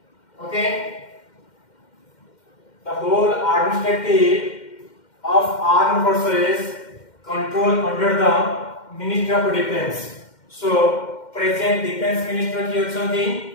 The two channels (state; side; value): late; right; 2.1 ms